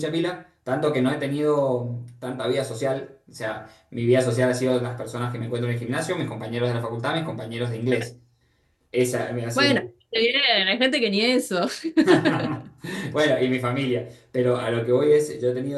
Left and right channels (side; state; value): both; identical; correlation 1.00